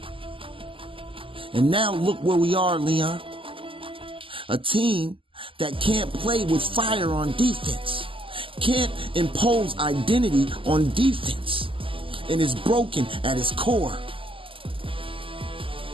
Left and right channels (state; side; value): late; left; 0.25 ms